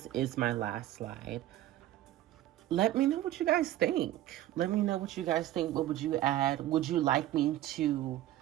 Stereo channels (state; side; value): quieter; left; 13.9 dB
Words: is my last slide. Let me know what you guys think. What would you add? Would you like me to